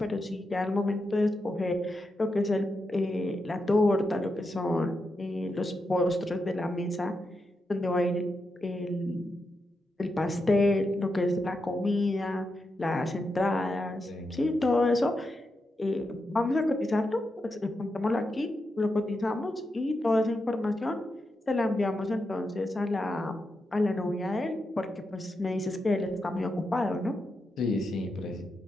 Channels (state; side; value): normal; both; correlation 0.86